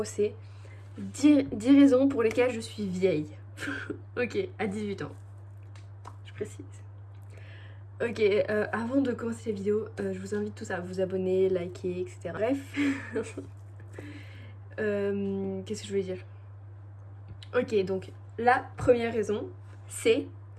c'est 10 raisons pour lesquelles je suis vieille. Ok, à 18 ans. Je précise. Ok, avant de commencer la vidéo, je vous invite tous à vous abonner, liker, etc. Bref. Qu'est-ce que je voulais dire? Ok, donc la première raison, c'est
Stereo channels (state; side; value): identical; both; correlation 1.00